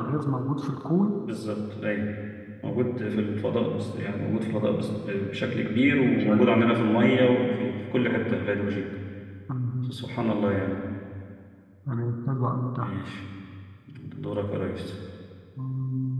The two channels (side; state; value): both; identical; correlation 1.00